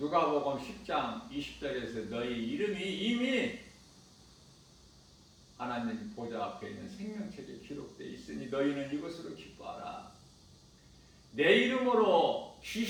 10장 20절에서 너희 이름이 이미 하나님 보좌 앞에 있는 생명책에 기록되어 있으니 너희는 이것으로 기뻐하라. 내 이름으로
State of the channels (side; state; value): both; identical; correlation 1.00